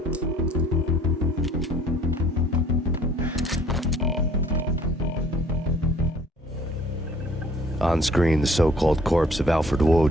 On screen, the so-called corpse of Alfred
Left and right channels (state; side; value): normal; both; correlation 0.56